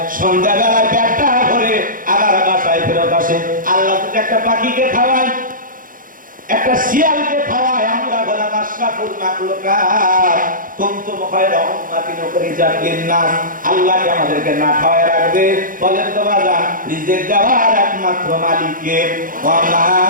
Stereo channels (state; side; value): late; left; 0.40 ms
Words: সন্ধ্যাবেলায় পেটটা ভরে আবার বাসায় ফেরত আসে। আল্লাহ যদি একটা পাখিকে খাওয়ায়, একটা শিয়ালকে খাওয়ায়, আমরা বললাম আশরাফুল মাখলুকাত কুনতুম খায়রা উম্মাতিন উখরিজাত লিন-নাস। আল্লাহ কি আমাদেরকে না খাওয়ায় রাখবে? বলেন তো বাজান, রিজিক দেওয়ার একমাত্র মালিক কে? ওয়া মা